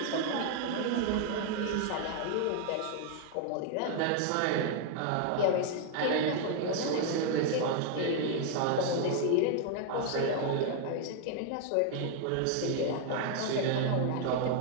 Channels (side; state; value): both; different; correlation 0.00